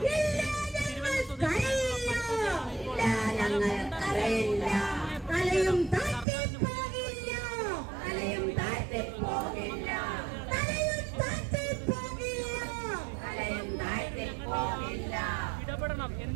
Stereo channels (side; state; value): left; drops out; at 6.2 s